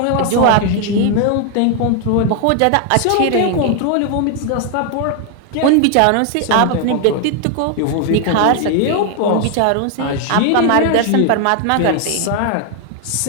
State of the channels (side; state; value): both; different; correlation 0.00